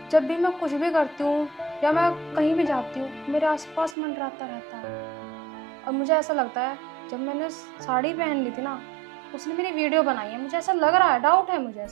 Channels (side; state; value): left; drops out; at 4.0 s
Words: जब भी मैं कुछ भी करती हूँ या मैं कहीं भी जाती हूँ, मेरे आसपास मंडराता रहता है। और मुझे ऐसा लगता है जब मैंने साड़ी पहन ली थी ना, उसने मेरी वीडियो बनाई है। मुझे ऐसा लग रहा है, डाउट है मुझे